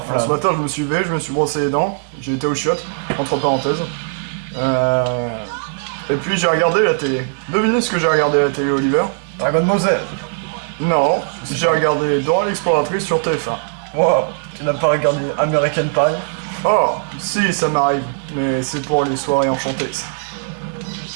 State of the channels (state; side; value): silent; left; digital silence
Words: Ce matin, je me suis levé, je me suis brossé les dents, j'ai été aux chiottes, entre parenthèses. Et puis j'ai regardé la télé. Devinez ce que j'ai regardé à la télé, Oliver? Dragon Ball Z. Non, j'ai regardé Dora l'exploratrice sur TF1. Wow, tu n'as pas regardé American Pie? Oh, si, ça m'arrive, mais c'est pour les soirées enchantées, ça.